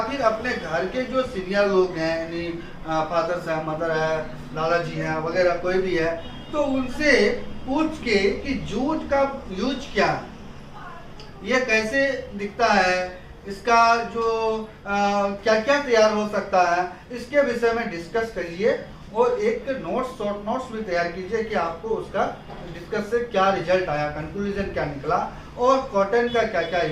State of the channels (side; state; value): both; identical; correlation 1.00